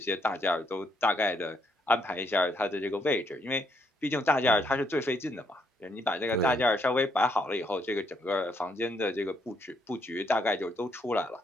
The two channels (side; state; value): both; normal; correlation 0.73